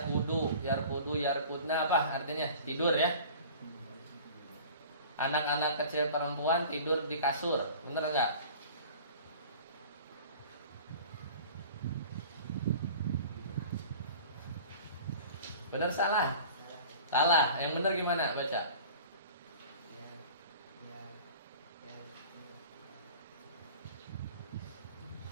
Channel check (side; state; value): both; inverted; correlation -0.43